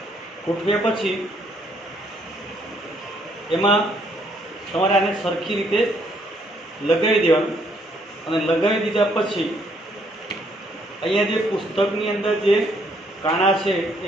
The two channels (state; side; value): normal; both; correlation 0.68